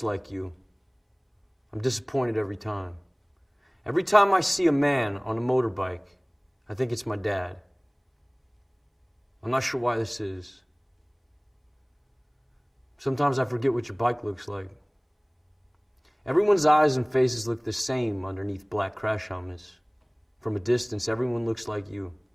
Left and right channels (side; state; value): both; identical; correlation 1.00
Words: like you. I'm disappointed every time. Every time I see a man on a motorbike, I think it's my dad. I'm not sure why this is. Sometimes I forget what your bike looks like. Everyone's eyes and faces look the same underneath black crash helmets. From a distance, everyone looks like you.